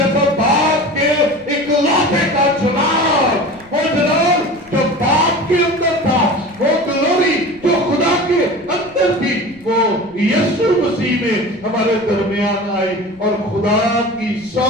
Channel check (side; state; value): right; noise; rumble, 27 dB below the sound